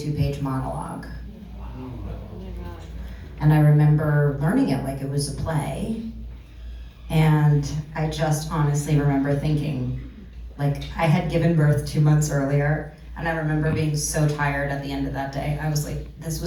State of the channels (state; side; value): identical; both; correlation 1.00